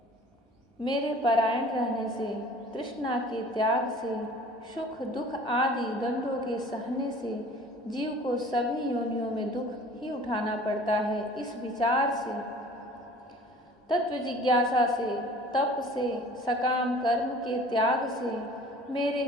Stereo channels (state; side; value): normal; both; correlation 0.47